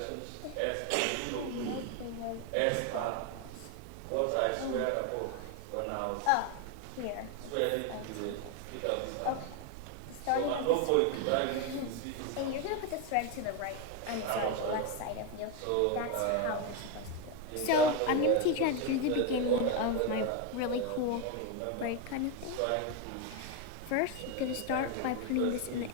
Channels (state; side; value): different; both; correlation 0.02